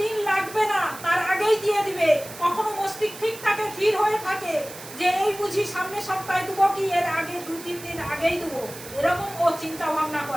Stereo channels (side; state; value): right; noise; hiss, 14 dB below the sound